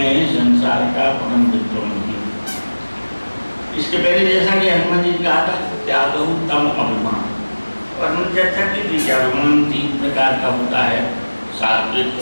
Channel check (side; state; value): both; inverted; correlation -1.00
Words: संसार का परम मित्र नहीं। इसके पहले जैसा कि हनुमान जी ने कहा था त्यागो तम अभिमान, और हम चर्चा की थी कि अभिमान 3 प्रकार का होता है, सात्विक,